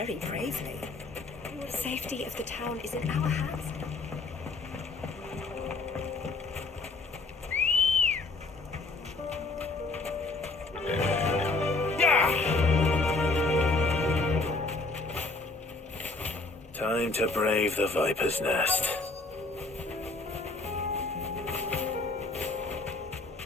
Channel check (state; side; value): quieter; right; 3.6 dB